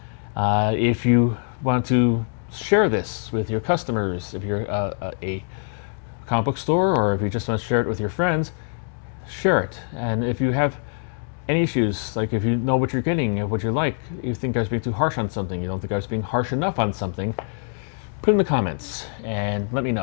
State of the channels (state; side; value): silent; right; digital silence